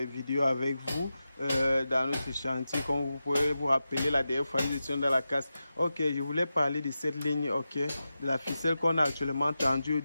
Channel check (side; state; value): both; inverted; correlation -0.92